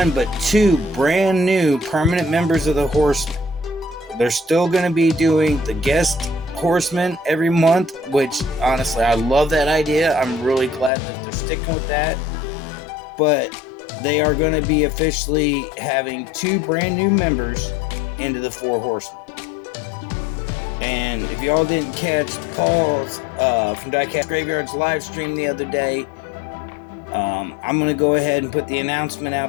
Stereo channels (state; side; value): drops out; right; at 10.9 s